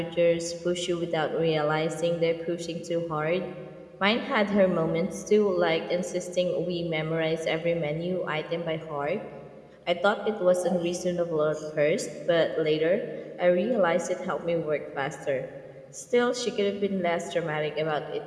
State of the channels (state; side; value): identical; both; correlation 1.00